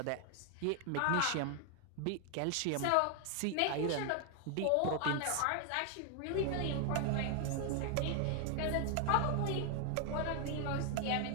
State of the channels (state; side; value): different; both; correlation 0.00